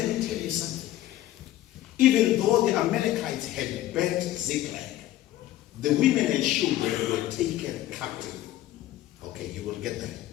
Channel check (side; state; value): right; quieter; 14.2 dB